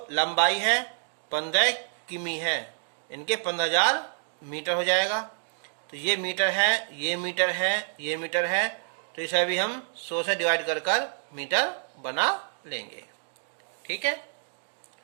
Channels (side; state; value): left; silent; digital silence